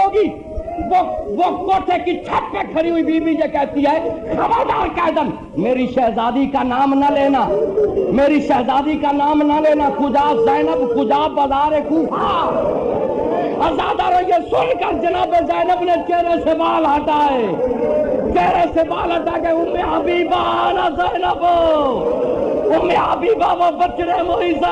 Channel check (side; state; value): both; identical; correlation 1.00